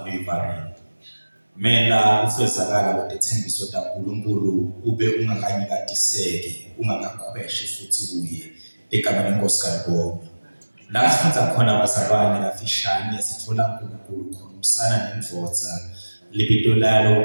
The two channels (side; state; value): both; inverted; correlation -1.00